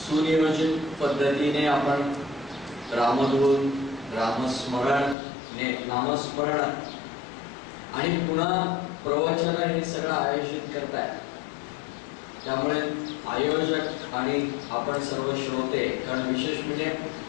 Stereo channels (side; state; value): right; drops out; at 5.2 s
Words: पद्धतीने आपण रामधून रामस्मरण नामस्मरण आणि पुन्हा प्रवचन हे सगळं आयोजित करताय. त्यामुळे आयोजक आणि आपण सर्व श्रोते, कारण विशेष म्हणजे